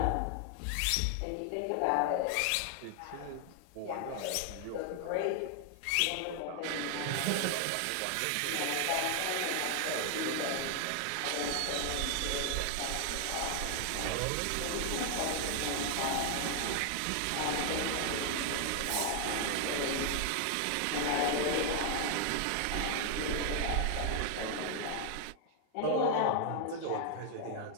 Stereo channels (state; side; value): different; both; correlation 0.00